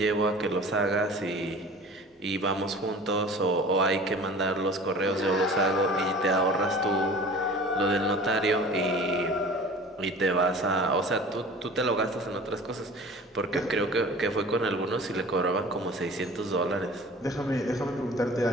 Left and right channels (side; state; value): both; normal; correlation 0.43